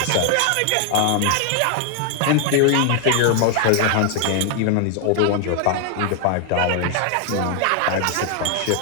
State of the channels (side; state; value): both; different; correlation 0.00